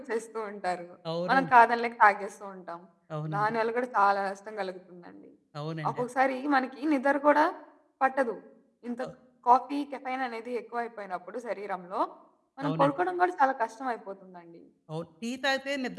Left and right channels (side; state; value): both; identical; correlation 1.00